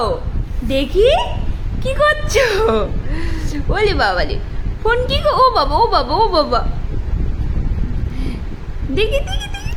দেখি কি করছো? ওলে বাবালে, ফোন কি ও বাবা ও বাবা ও বাবা, দেখি দেখি দেখি,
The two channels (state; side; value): identical; both; correlation 1.00